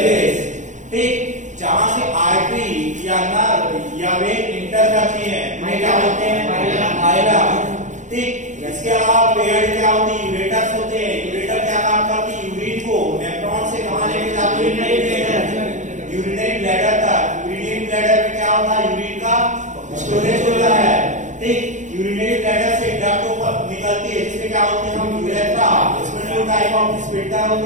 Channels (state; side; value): late; left; 0.35 ms